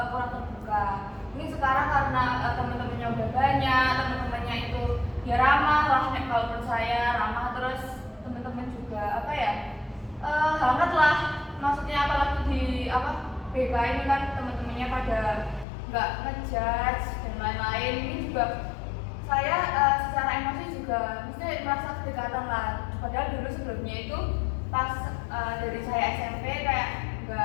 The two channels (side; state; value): right; drops out; at 15.7 s